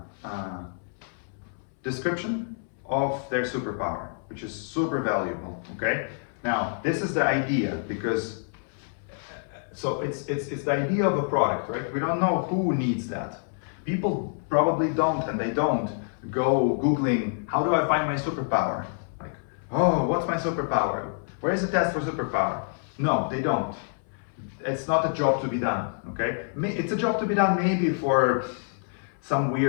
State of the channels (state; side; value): silent; right; 60 dB below the other